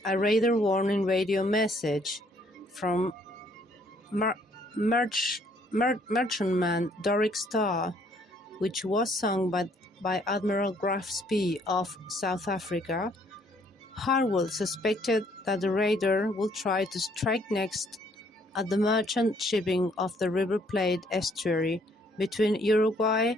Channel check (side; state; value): both; normal; correlation 0.65